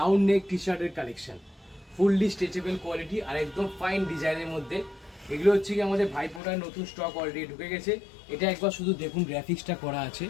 নেক টি শার্টের কালেকশন, ফুললি স্ট্রেচেবল কোয়ালিটি আর একদম ফাইন ডিজাইনের মধ্যে। এগুলো হচ্ছে কি আমাদের ভাইফোঁটার নতুন স্টক অলরেডি ঢুকে গেছে। এটা একবার শুধু দেখুন, গ্রাফিক্সটা করা আছে,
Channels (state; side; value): drops out; right; at 6.4 s